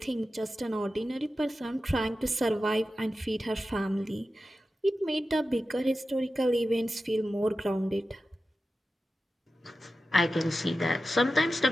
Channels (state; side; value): normal; both; correlation 0.93